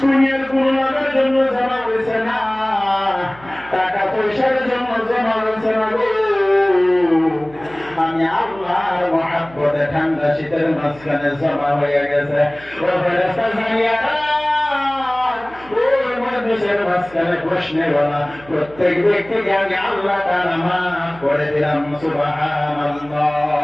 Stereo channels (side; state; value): right; noise; hum, 22 dB below the sound